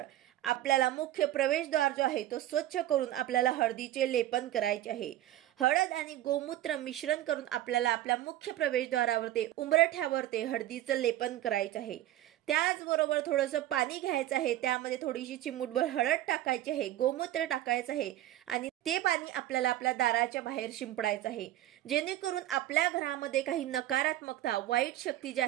आपल्याला मुख्य प्रवेशद्वार जो आहे तो स्वच्छ करून आपल्याला हळदीचे लेपन करायचे आहे। हळद आणि गोमूत्र मिश्रण करून आपल्याला आपल्या मुख्य प्रवेशद्वारावर ते उंबरठ्यावर ते हळदीचं लेपन करायचं आहे। त्याचबरोबर थोडंसं पाणी घ्यायचं आहे, त्यामध्ये थोडीशी चिमूटभर हळद टाकायची आहे, गोमूत्र टाकायचं आहे आणि ते पाणी आपल्याला आपल्या दाराच्या बाहेर शिंपडायचं आहे, जेणेकरून आपल्या घरामध्ये काही नकारात्मकता, वाईट शक्ती जे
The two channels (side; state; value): left; quieter; 13.8 dB